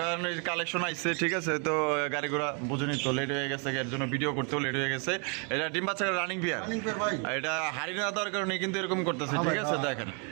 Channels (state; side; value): quieter; left; 37.5 dB